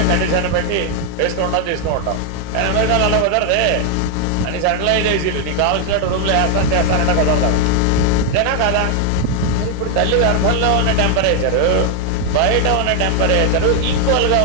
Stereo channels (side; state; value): both; different; correlation 0.00